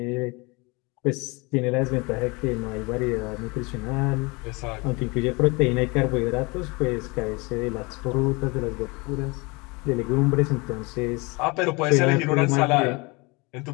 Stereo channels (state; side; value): quieter; right; 26.9 dB